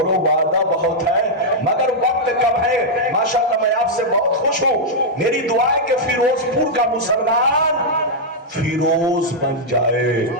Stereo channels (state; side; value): normal; both; correlation -0.05